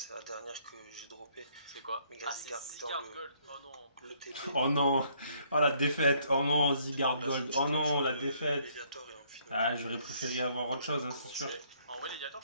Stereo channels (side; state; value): both; inverted; correlation -0.66